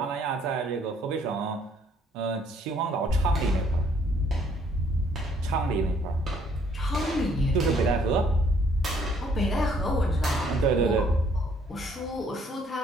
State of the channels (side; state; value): both; normal; correlation 0.64